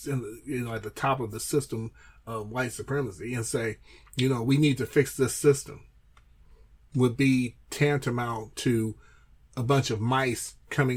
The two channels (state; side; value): identical; both; correlation 1.00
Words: top of the system of white supremacy and say, we need to fix this system. would be tantamount to a bunch of mice